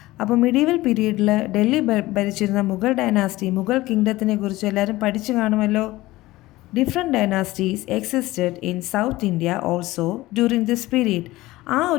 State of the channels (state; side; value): quieter; right; 18.3 dB